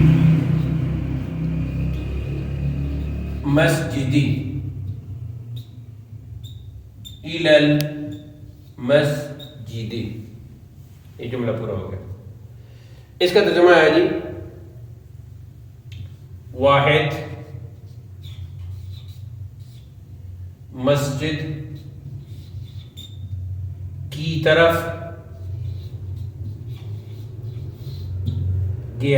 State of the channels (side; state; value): both; identical; correlation 1.00